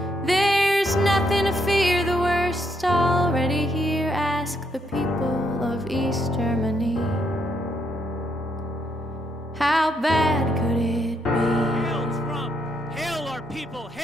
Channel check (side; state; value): both; normal; correlation 0.75